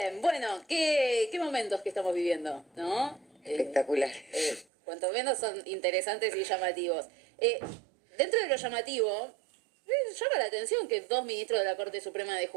bueno, qué momentos que estamos viviendo, ¿no? Espectacular. Cuanto menos son interesantes y llamativos. Dentro de lo llamativo, llama la atención que dos ministros de la Corte Suprema de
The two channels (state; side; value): drops out; left; at 4.7 s